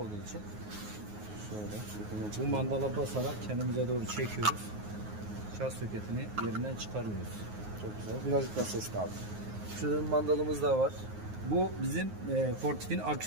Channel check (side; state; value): left; late; 9.5 ms